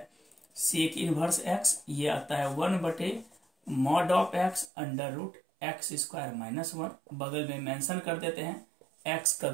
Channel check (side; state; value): left; drops out; at 4.7 s